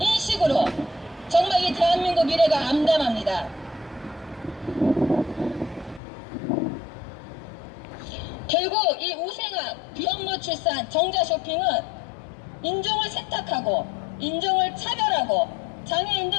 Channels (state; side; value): drops out; right; at 6.0 s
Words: 정말 이 대한민국 미래가 암담합니다. 결국 이 우생학, 비혼모 출산, 정자 쇼핑은 인종을 세탁하고 인종을 차별하고